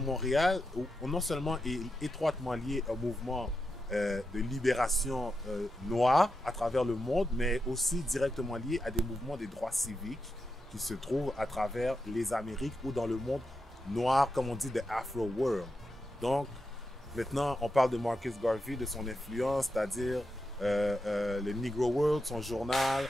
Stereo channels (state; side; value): normal; both; correlation 0.87